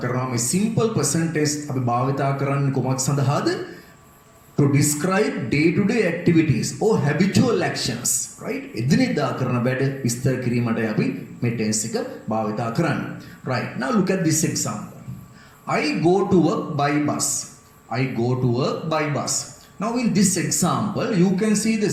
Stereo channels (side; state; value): both; identical; correlation 1.00